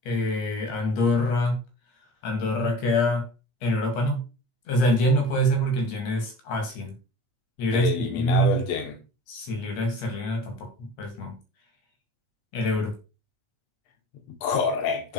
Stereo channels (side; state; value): right; late; 8.4 ms